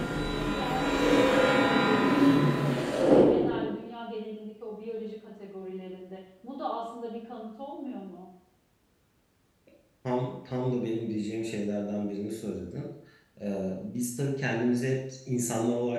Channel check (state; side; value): identical; both; correlation 1.00